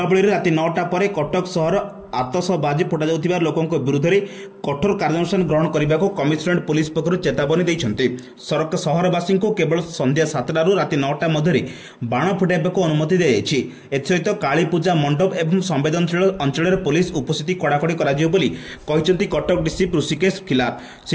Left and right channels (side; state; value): both; identical; correlation 1.00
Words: राति 9टा पर कटक सहर आतशबाजी फुटा जाउथिबा लोकों विरुद्ध में कठोर कार्यानुष्ठान ग्रहण करने को कमिशनरेट पुलिस पक्षर चेतावनी देइछन्ते। सहरवासी को केवल संध्या 7टा रु राति 9टा मध्य बाण फुटाइबा अनुमति दी जाइछि। एसहित काली पूजा मंडप एवं संवेदनशील अंचल पुलिस उपस्थिति कड़ाकड़ी कहिसेंति कटक डीसी ऋषिकेश खिलार।